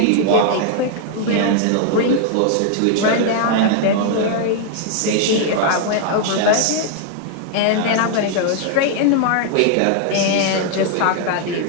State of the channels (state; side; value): different; both; correlation 0.00